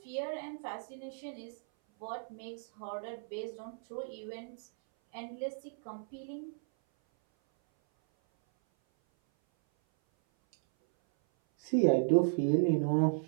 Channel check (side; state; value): left; silent; 55 dB below the other